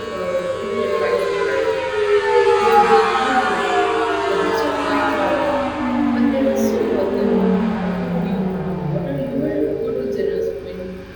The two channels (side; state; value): both; identical; correlation 1.00